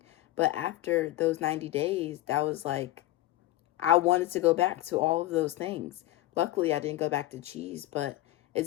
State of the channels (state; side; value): quieter; right; 16.3 dB